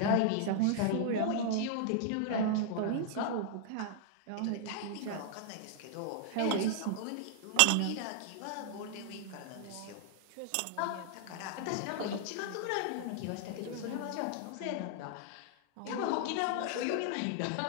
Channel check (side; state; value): both; different; correlation -0.01